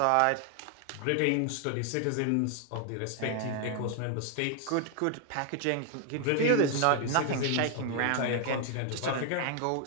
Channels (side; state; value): both; different; correlation 0.00